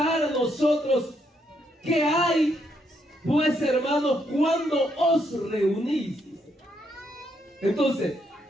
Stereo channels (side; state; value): both; normal; correlation 0.76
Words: a nosotros, ¿qué hay, pues, hermanos, cuando os reunís? Entonces,